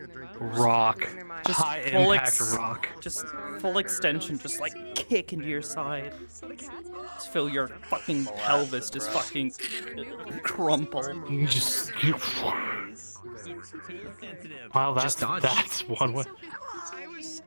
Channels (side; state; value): both; inverted; correlation -1.00